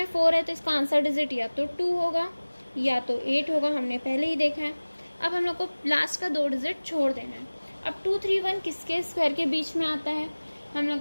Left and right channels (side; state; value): both; inverted; correlation -1.00